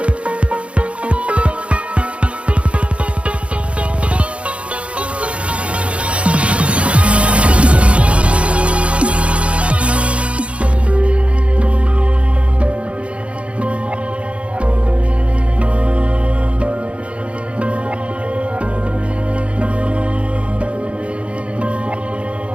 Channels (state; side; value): late; left; 0.061 ms